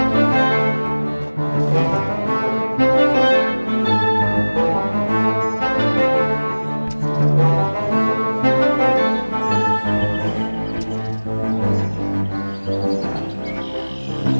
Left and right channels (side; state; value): both; inverted; correlation -1.00